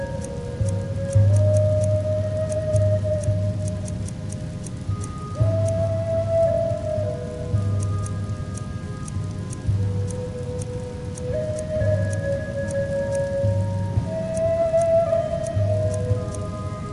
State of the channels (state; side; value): identical; both; correlation 1.00